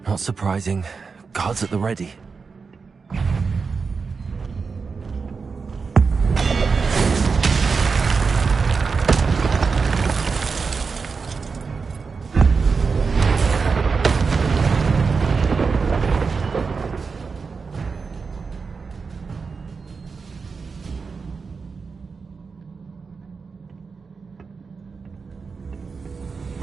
Not surprising. Guards at the ready.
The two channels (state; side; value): quieter; left; 5.0 dB